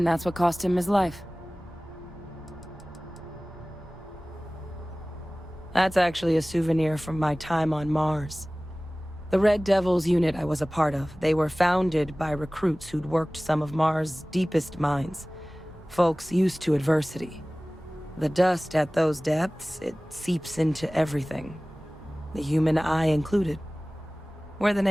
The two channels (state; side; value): normal; both; correlation 0.98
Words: that's what cost him his life. That's actually a souvenir from my time on Mars. The Red Devils unit I was a part of, they were founded by recruits who'd worked some of Mars' deepest mines. Folks used to adversity. The dust at those depths, it seeps into everything. The human eye included. Where the